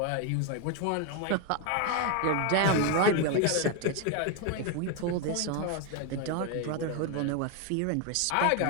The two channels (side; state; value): both; different; correlation 0.01